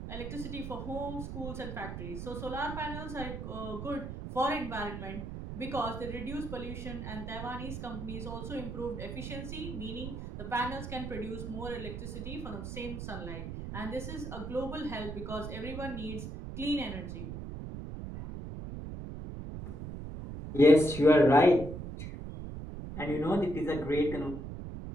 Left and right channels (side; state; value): right; noise; rumble, 7 dB below the sound